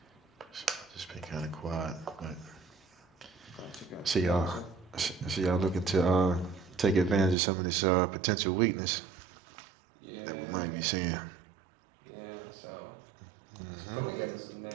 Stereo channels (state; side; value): drops out; left; at 7.4 s